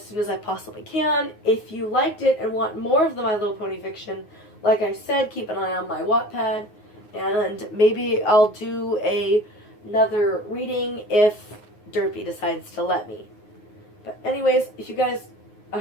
soon as I possibly can. If you liked it and want more of the My Little Pony fiction, like I said, keep an eye on my Wattpad. And maybe I'll do another reading if Derpy decides to let me. But anyways, I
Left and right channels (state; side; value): late; right; 9.5 ms